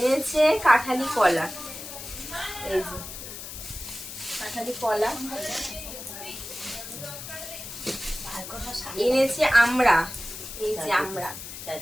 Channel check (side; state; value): left; noise; hiss, 10 dB below the sound